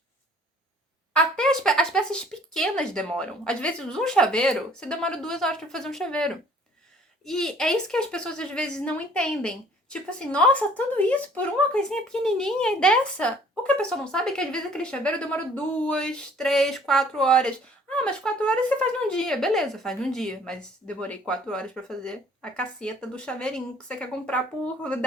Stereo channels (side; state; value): both; normal; correlation 0.56